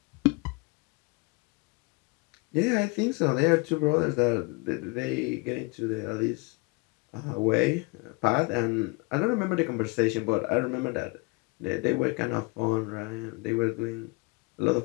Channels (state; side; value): quieter; right; 27.2 dB